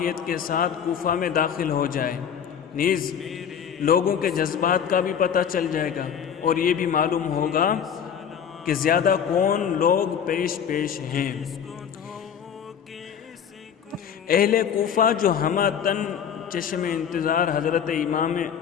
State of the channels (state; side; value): quieter; right; 8.1 dB